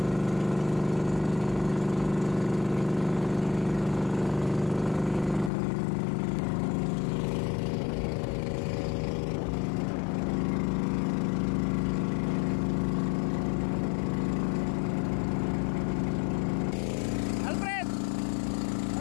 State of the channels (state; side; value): drops out; right; at 5.5 s